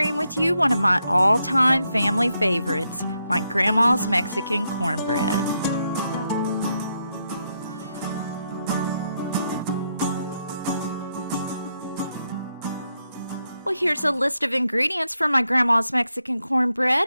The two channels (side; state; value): both; inverted; correlation -0.81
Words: with you one of my all-time family favorites, my grandma's Mexican cornbread. Well, here's a list of ingredients for my grandma's Mexican